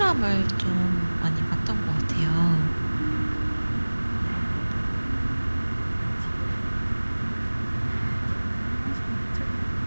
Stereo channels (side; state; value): both; inverted; correlation -1.00